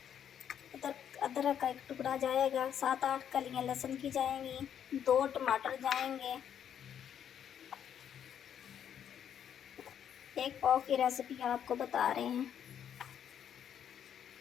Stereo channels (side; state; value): right; quieter; 9.1 dB